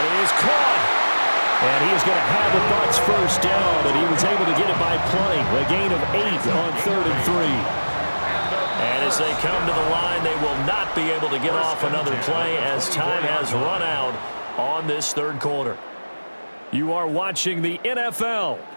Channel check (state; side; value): inverted; both; correlation -1.00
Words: is caught. And he is going to have a Bucs 1st down, and he was able to get it by plenty. A gain of 8 on 3rd and 3. And as they come to the line, they will not be able to get off another play as time has run out on this 3rd quarter. You are watching the NFL